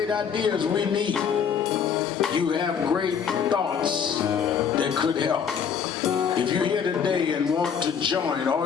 ideas we need. You have great thoughts that could help. If you're here today and want to join, all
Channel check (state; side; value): quieter; right; 7.2 dB